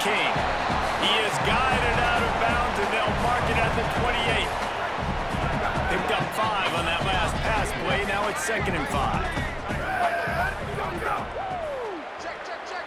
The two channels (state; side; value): identical; both; correlation 1.00